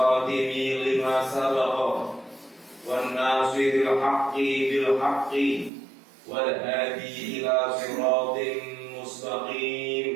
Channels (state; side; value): drops out; left; at 5.7 s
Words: lima sabaqa wan nasiril haqqi bil haqqi wal hadi ila siratin